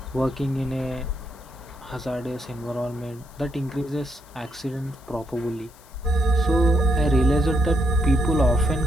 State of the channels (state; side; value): noise; left; hiss, 26 dB below the sound